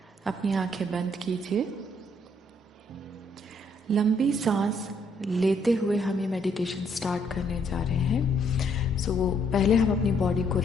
अपनी आंखें बंद कीजिए। लंबी सांस लेते हुए हम ये मेडिटेशन स्टार्ट करने जा रहे हैं। सो पहले हम अपनी बॉडी को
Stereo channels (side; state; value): both; normal; correlation 0.69